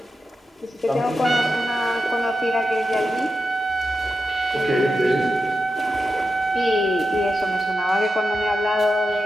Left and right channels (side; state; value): both; normal; correlation 0.88